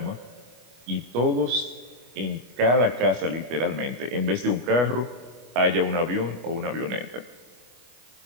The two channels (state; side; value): late; left; 24 ms